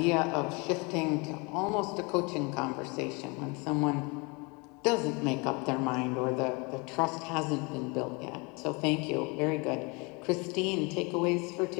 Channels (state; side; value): quieter; right; 29.3 dB